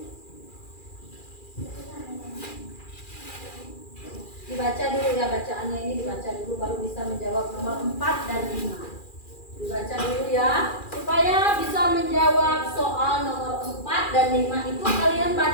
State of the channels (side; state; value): right; late; 2.4 ms